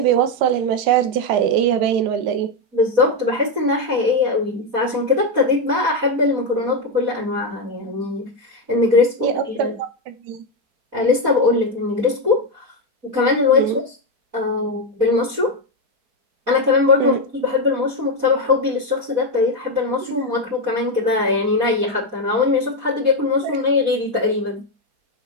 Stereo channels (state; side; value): late; left; 4.2 ms